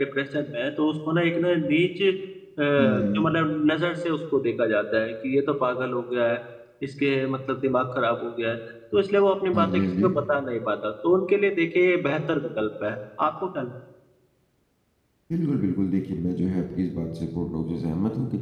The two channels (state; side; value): identical; both; correlation 1.00